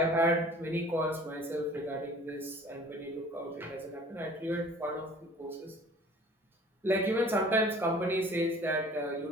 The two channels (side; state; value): both; normal; correlation 0.48